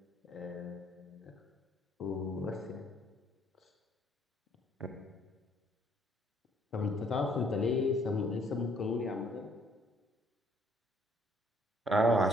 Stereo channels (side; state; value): both; normal; correlation 0.64